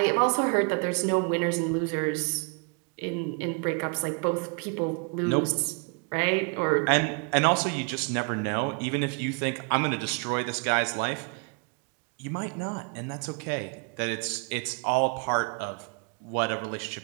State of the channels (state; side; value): quieter; left; 37.1 dB